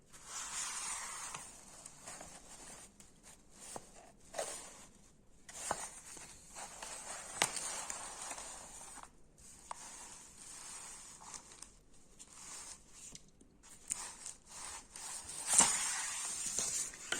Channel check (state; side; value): identical; both; correlation 1.00